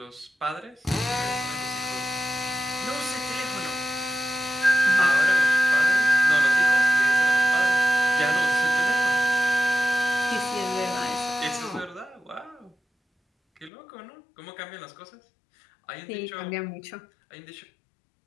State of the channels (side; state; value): right; drops out; at 13.7 s